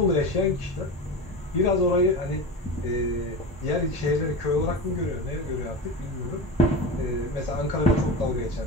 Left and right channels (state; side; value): normal; both; correlation 0.26